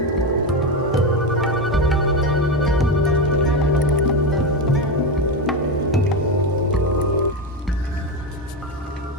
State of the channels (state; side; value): normal; both; correlation 0.14